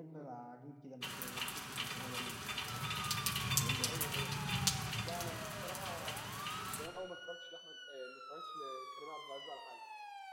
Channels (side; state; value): both; identical; correlation 1.00